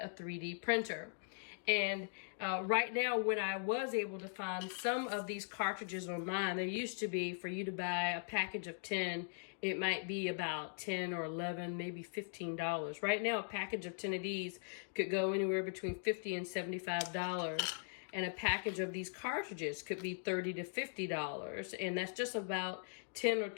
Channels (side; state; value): right; silent; digital silence